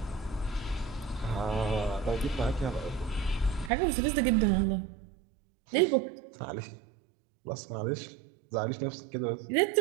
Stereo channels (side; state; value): left; drops out; at 3.7 s